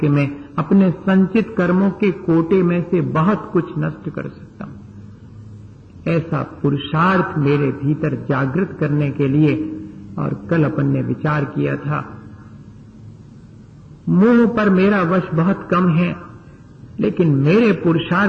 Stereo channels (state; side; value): identical; both; correlation 1.00